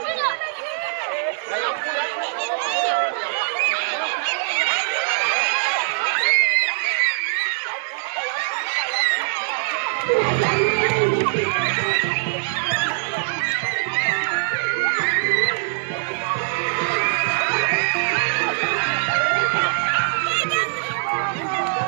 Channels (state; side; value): silent; left; digital silence